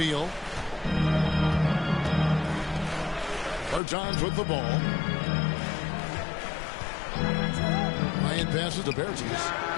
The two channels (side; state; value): right; drops out; at 3.8 s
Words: Bertans with the ball. Bryant passes to Bertans.